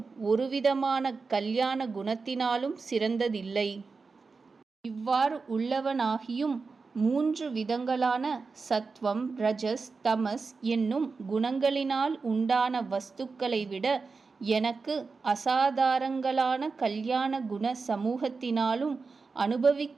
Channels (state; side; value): quieter; left; 4.5 dB